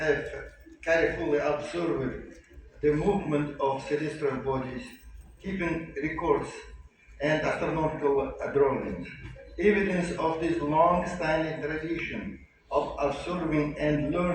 have carefully observed the movement of celestial bodies, keeping records and astronomical drawings. Evidence of this long-standing tradition of observing and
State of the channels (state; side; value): identical; both; correlation 1.00